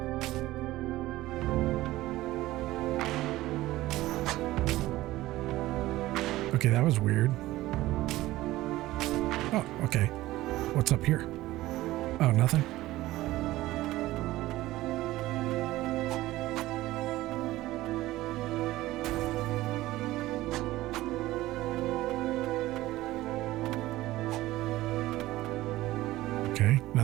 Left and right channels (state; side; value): quieter; left; 16.9 dB